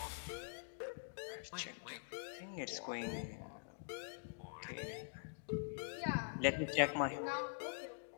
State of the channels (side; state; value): right; silent; digital silence